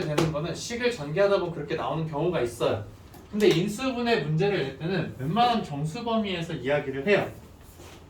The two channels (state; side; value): identical; both; correlation 1.00